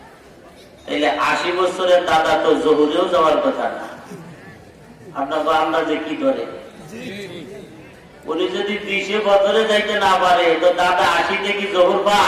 তাহলে 80 বছরের দাদা তো জহুরেও যাওয়ার কথা না। আপনার আন্দাজে কি ধরে? উনি যদি 20 ফজরে যাইতে না পারে, তো দাদা 80 কি জহুর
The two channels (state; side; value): identical; both; correlation 1.00